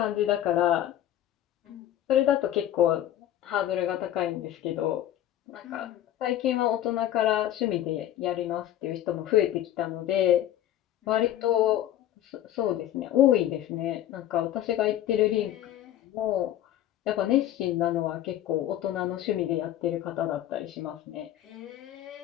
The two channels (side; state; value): right; quieter; 12.3 dB